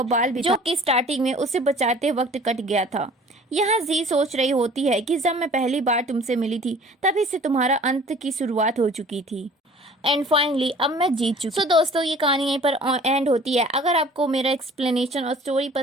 बाल भी जो कि स्टार्टिंग में उसे बचाते वक्त कट गया था। यहाँ जी सोच रही होती है कि जब मैं पहली बार तुमसे मिली थी तभी से तुम्हारा अंत की शुरुआत हो चुकी थी एंड फाइनली अब मैं जीत चुकी। सो दोस्तों ये कहानी यहीं पर एंड होती है। अगर आपको मेरा एक्सप्लेनेशन और स्टोरी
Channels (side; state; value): both; normal; correlation 0.49